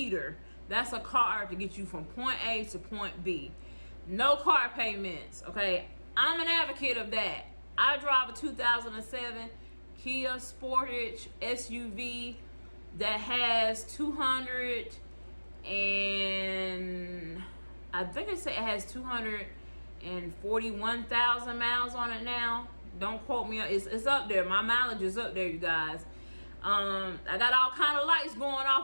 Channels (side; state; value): both; inverted; correlation -1.00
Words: That's a car to get you from point A to point B. No car payments, okay? I'm an advocate of that. I drive a 2007 Kia Sportage SUV that has 200 and I think it has 241,000 miles on it now. Don't quote me. It's up there. My mileage is up there, you guys. I got all kind of lights going